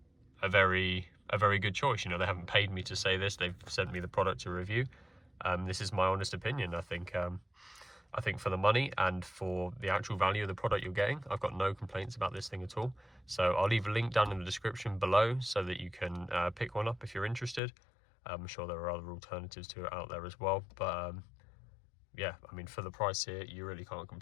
very good choice. You know, they haven't paid me to say this, they've sent me the product to review. This is my honest opinion. I think for the money and for the actual value of the product you're getting, I've got no complaints about this thing at all. So I'll leave a link down in the description below so that you can pick one up if you're interested. I'm sure there are other alternatives to it out there as well, but yeah, I mean, for the price here, you really can't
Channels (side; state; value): right; drops out; at 17.6 s